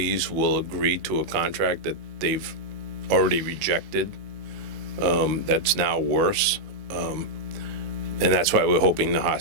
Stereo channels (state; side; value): late; left; 18 ms